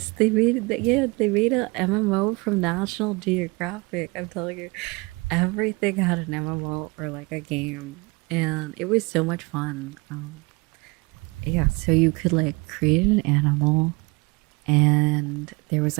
they made it. Yeah, they made a MMO from National Geographic. I'm telling you, everything had an MMO or like a game, and it was so much fun. Yeah, so you could like create an animal, and there was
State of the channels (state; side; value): quieter; left; 27.0 dB